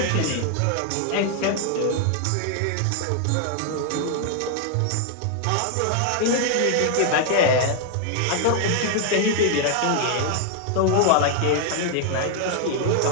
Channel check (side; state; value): both; different; correlation 0.00